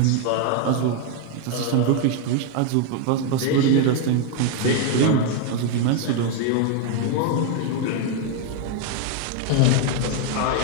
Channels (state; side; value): different; both; correlation 0.01